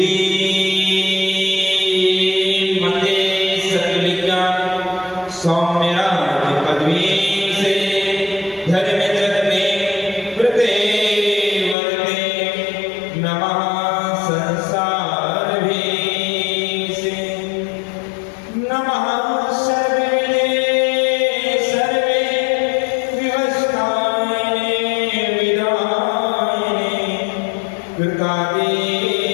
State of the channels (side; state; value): right; drops out; at 11.8 s